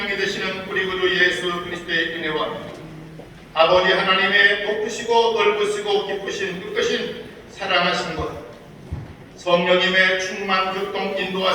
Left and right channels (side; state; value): both; identical; correlation 1.00